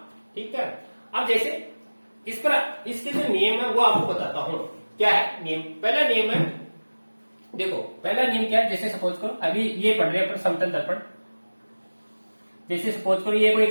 ठीक है, अब जैसे इस पर इसके जो नियम है वो आपको बताता हूं। क्या है नियम? पहला नियम है, देखो पहला नियम क्या है, जैसे सपोज करो अभी ये पढ़ रहे हैं अपन समतल दर्पण, जैसे सपोज करो ये कोई एक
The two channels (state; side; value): inverted; both; correlation -1.00